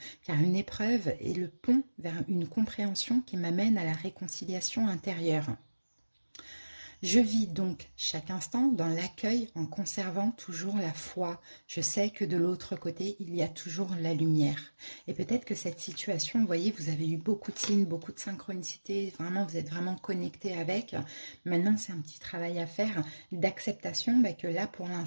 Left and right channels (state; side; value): inverted; both; correlation -1.00